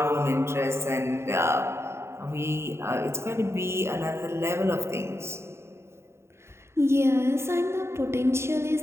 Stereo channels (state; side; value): late; left; 0.13 ms